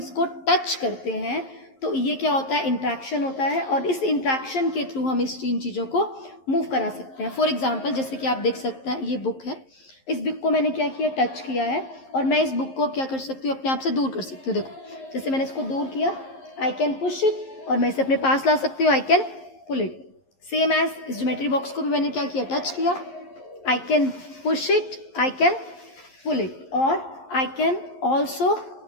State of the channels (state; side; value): late; right; 11 ms